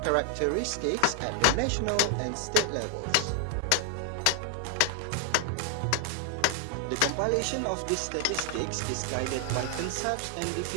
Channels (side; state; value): both; different; correlation 0.00